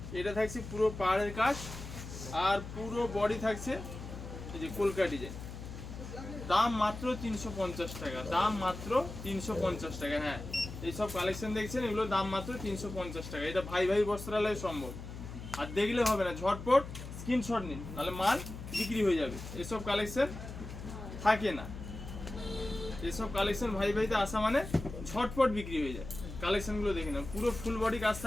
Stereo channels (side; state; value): left; noise; hum, 10 dB below the sound